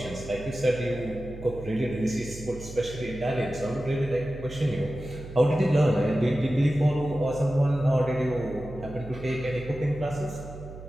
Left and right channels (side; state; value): right; noise; hum, 13 dB below the sound